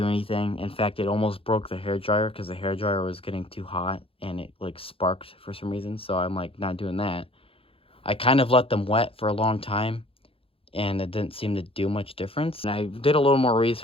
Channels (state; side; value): late; right; 0.27 ms